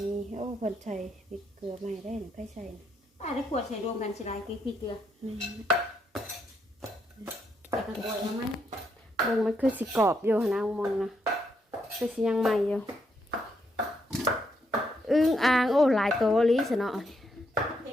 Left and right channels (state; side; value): normal; both; correlation 0.77